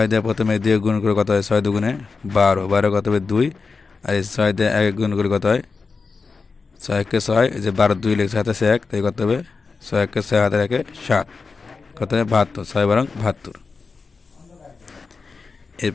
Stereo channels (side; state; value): right; quieter; 4.6 dB